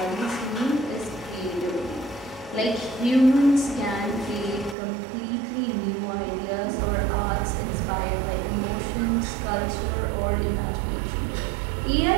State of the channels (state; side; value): drops out; left; at 4.8 s